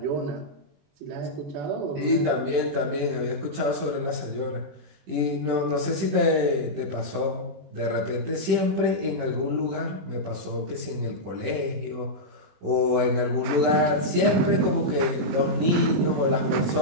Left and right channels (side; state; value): left; late; 21 ms